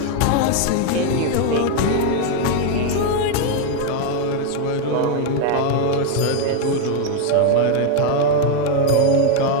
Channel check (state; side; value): different; both; correlation 0.01